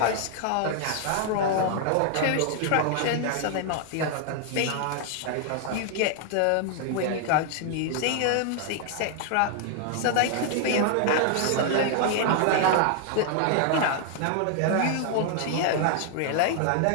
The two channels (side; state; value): both; different; correlation 0.00